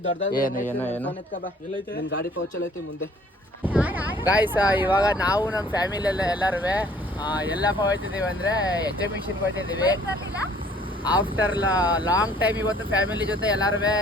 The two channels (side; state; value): both; normal; correlation 0.57